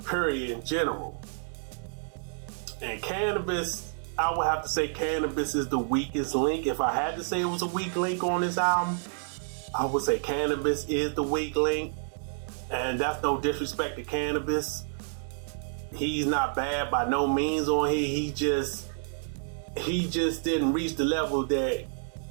period, in general. And Cannabis, I would have to say Cannabis is the weakest link. If I had to say it was a weak link on this album, I would say Cannabis is the weak link. And that's no disrespect to Cannabis, He's not bad by no means on here. He just didn't reach the level that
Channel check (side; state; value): left; silent; digital silence